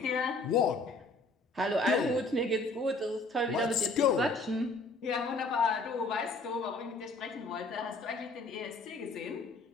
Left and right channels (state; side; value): quieter; right; 3.3 dB